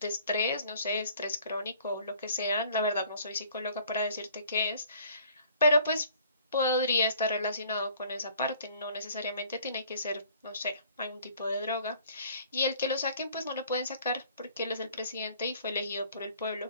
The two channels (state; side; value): inverted; both; correlation -0.56